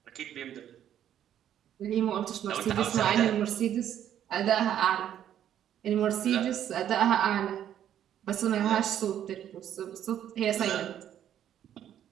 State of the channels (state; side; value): quieter; left; 10.5 dB